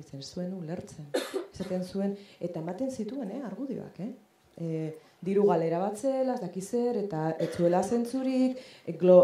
zuen ulertzen. Esaten zuen, eta ematen zituen, argudioak, diru galera bat zela, ez dakizer, eta ez zuela zentzurik,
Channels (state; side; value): identical; both; correlation 1.00